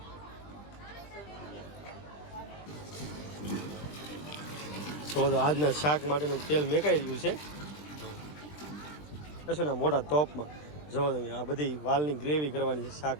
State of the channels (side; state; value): right; late; 20 ms